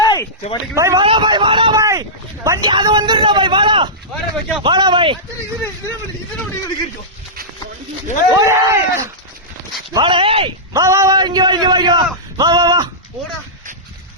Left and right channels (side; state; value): both; normal; correlation -0.15